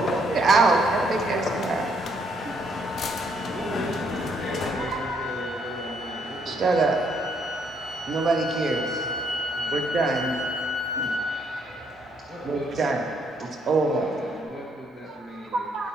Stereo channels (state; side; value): normal; both; correlation 0.70